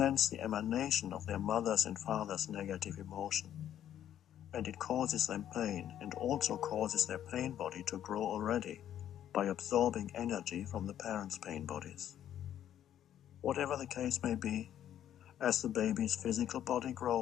the emanation of their mother's and father's negative emotion, and it causes them pain and also causes their pain body to grow already by absorbing energy from the parents' pain bodies. Whatever the case may be, as the baby's physical body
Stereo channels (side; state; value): right; quieter; 10.8 dB